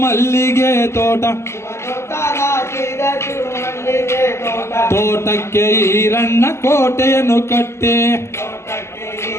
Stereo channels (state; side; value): late; right; 0.13 ms